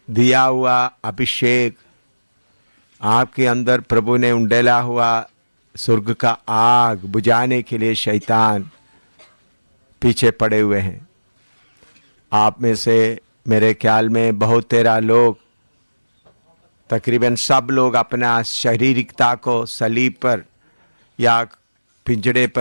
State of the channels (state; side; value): inverted; both; correlation -1.00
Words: दिया हुआ अभिषेक, आपके अंदर प्रभु ने उंडेला हुआ स्वर्ग का आग बुझाने के लिए शैतान पीछे पड़े हुए हैं। आप में से मेरे ख्याल में बहुत तेरा लोग, तकरीबन सब लोग अपना शारीरिकता को सलीब पर या पिंजड़े